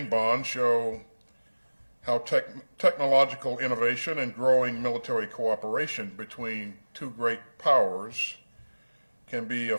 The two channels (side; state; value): both; inverted; correlation -1.00